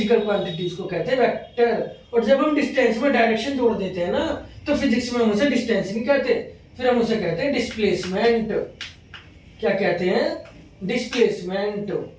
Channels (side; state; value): both; identical; correlation 1.00